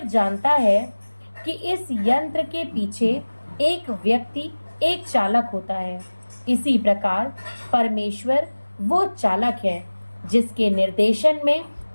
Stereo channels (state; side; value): inverted; both; correlation -1.00